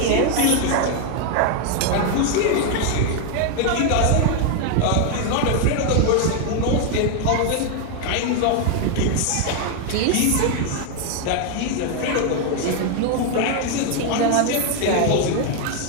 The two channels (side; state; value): both; different; correlation 0.01